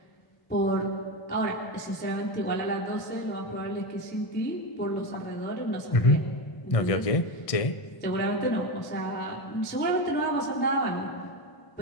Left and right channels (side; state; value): right; late; 1.6 ms